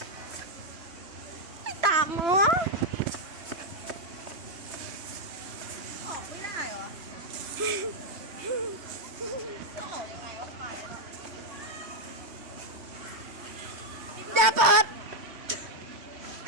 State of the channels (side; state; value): left; late; 3.1 ms